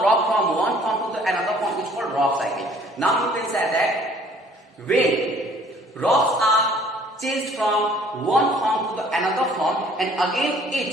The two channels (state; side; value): normal; both; correlation 0.56